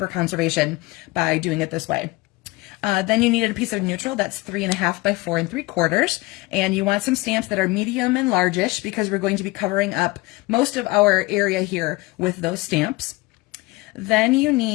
conservation by doing it this way. Then you needed a piece of neutral that's 3.5 by 4 3/4, and you want some stamps that are medium and largish, because we're going to be covering up most of our area here with those stamps. Then you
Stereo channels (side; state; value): right; quieter; 22.0 dB